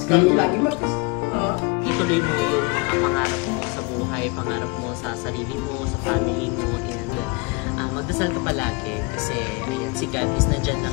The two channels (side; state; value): right; quieter; 28.6 dB